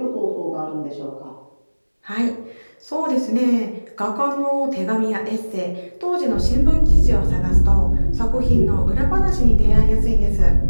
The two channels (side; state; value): both; inverted; correlation -1.00